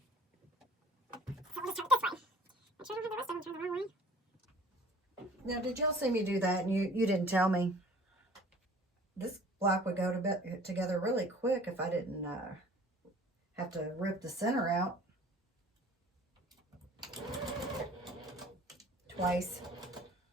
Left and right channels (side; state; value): both; normal; correlation 0.50